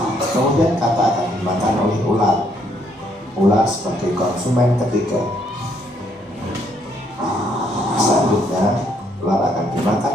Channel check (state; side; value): normal; both; correlation 0.70